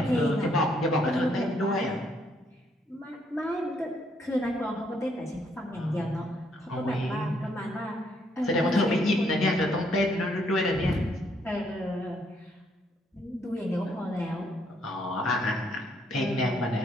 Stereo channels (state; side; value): normal; both; correlation 0.71